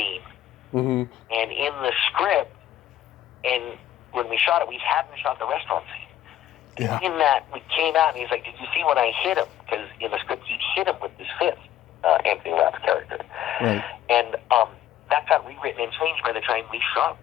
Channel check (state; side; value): quieter; right; 11.9 dB